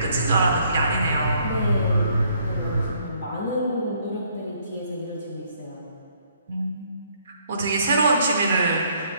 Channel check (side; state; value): both; inverted; correlation -0.66